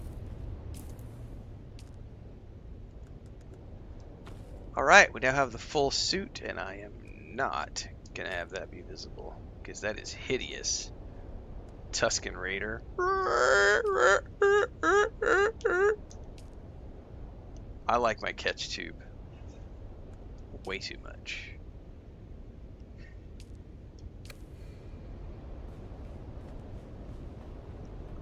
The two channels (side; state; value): both; identical; correlation 1.00